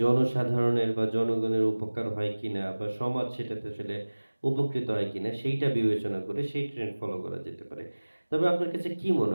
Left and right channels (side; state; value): both; inverted; correlation -1.00